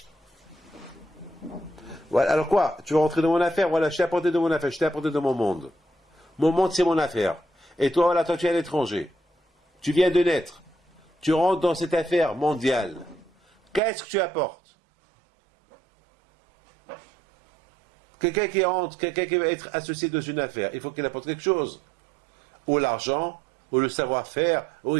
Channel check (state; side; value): drops out; left; at 13.8 s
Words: Voilà, alors quoi? Tu veux rentrer dans mon affaire? Voilà, je t'ai apporté de mon affaire, je t'ai apporté de mon monde. Mon monde, c'est mon affaire. Et toi, voilà, toi, tu es à l'étranger. Tu viens de naître. Tu rentres dans cette affaire mondiale. Qu'est-ce que tu apportes? Quelqu'un qui rentre, quelqu'un qui va être associé dans une affaire, il faut qu'il apporte quelque chose. Ou l'argent, ou le savoir-faire, ou